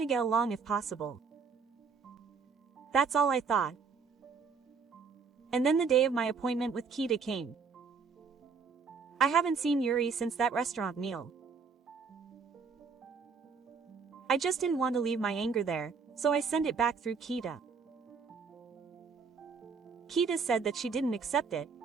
to get along if possible. That's all I thought. And then the day of my appointment with Kita came. I haven't seen Yuri since that restaurant meal. I just didn't want to leave my anger there, so I sent it back through Kita. Kita said that she didn't accept it,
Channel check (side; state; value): left; quieter; 5.4 dB